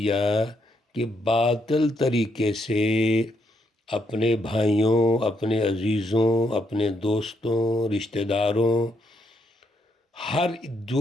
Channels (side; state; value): both; normal; correlation 0.76